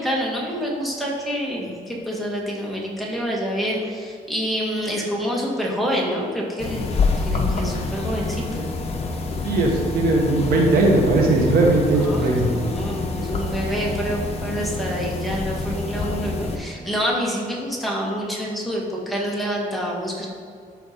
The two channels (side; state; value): both; normal; correlation 0.59